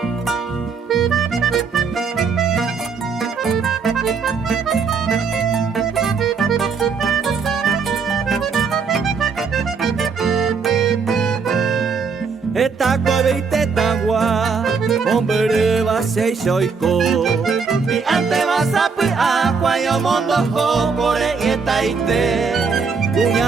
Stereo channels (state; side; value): quieter; left; 5.3 dB